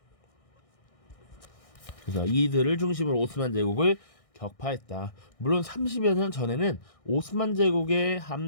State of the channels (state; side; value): late; right; 1.6 ms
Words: 그래서 이들을 중심으로 오스만 제국을 격파했다. 물론 30여 년 전에는 오스만 제국의